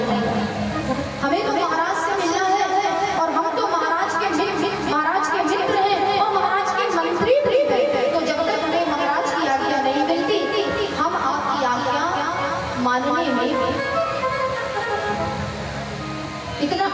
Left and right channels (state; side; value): identical; both; correlation 1.00